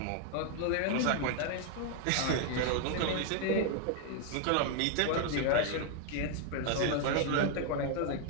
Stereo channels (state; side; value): different; both; correlation 0.00